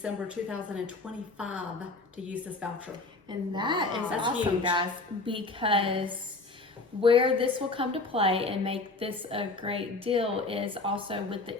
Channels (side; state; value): right; quieter; 3.4 dB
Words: 2025 to use this voucher. And that is That's awesome, huge. guys, because where this will come to play and make this a great deal is also with the